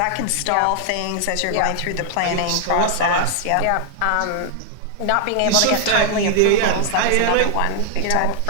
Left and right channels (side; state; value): both; different; correlation 0.00